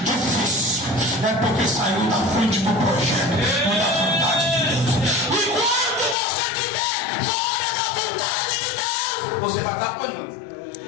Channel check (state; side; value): drops out; right; at 6.2 s